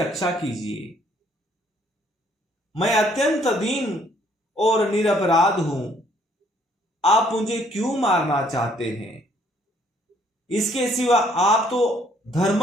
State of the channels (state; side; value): normal; both; correlation 0.64